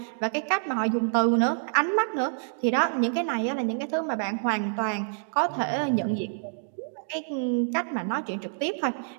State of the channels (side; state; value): left; silent; digital silence